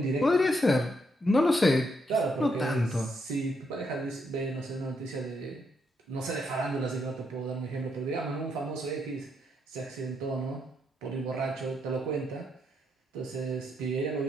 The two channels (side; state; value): both; normal; correlation 0.78